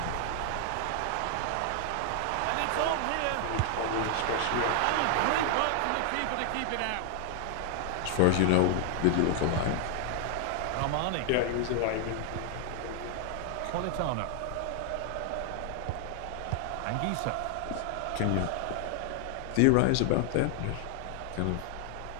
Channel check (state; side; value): different; both; correlation 0.00